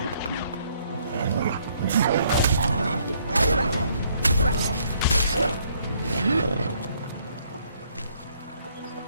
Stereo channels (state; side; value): inverted; both; correlation -0.67